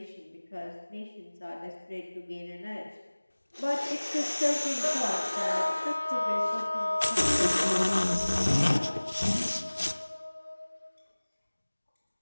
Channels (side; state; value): both; inverted; correlation -1.00